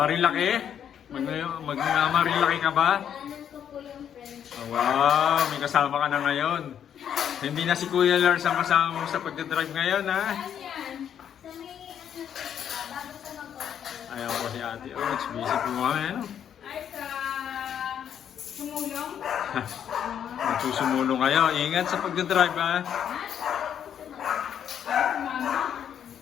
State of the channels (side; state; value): right; quieter; 9.1 dB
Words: Marilaki ka ba? Oh, wow, may kasama ka na ngayon. Hindi na si Kuya Lars ang kasama mo sa pagdadrive ngayon, ha? Ayaw po si Ate Oats, busy po kami, ano? Ay, sa sumulong? Magsusumulong kayo. Ingat sa pagdadrive, ha? Ay, mama.